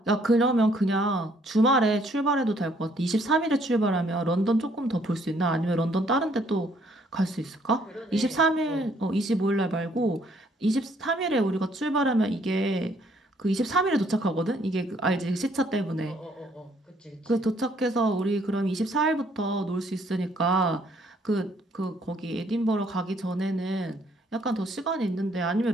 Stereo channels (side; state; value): both; normal; correlation 0.66